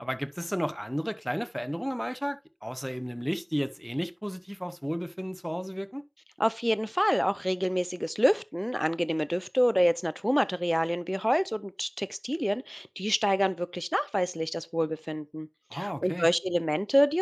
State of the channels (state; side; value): identical; both; correlation 1.00